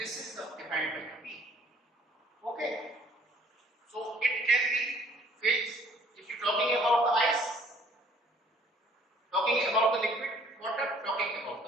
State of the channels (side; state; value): both; normal; correlation 0.57